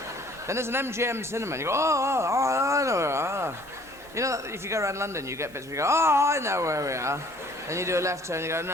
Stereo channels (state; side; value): normal; both; correlation 0.56